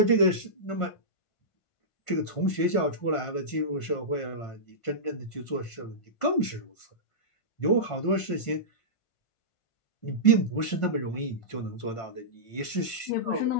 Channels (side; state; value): right; late; 1.5 ms